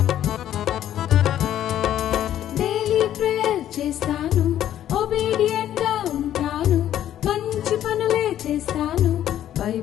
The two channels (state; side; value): quieter; right; 11.5 dB